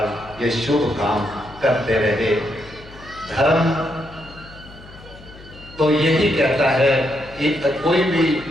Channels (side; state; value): left; noise; hum, 20 dB below the sound